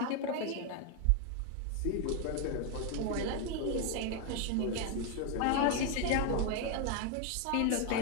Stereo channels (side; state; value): both; different; correlation 0.01